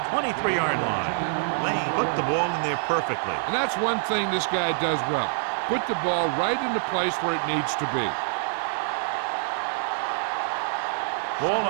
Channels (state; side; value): silent; left; digital silence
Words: 23-yard line. Lane put the ball in there perfectly. And that's one thing this guy does well. Put the ball right in the place where it needs to be. Ball